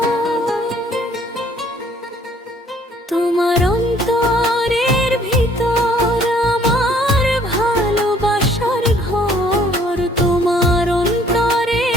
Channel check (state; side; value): normal; both; correlation 0.60